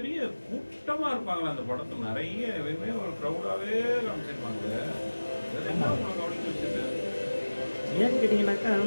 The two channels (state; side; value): inverted; both; correlation -1.00